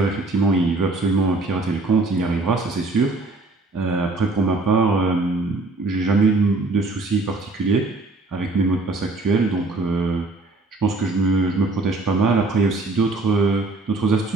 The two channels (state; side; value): quieter; left; 3.2 dB